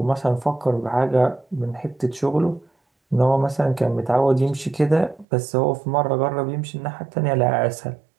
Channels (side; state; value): left; drops out; at 5.2 s